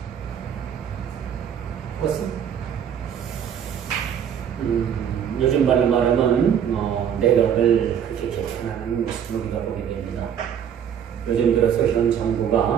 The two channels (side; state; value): left; quieter; 8.7 dB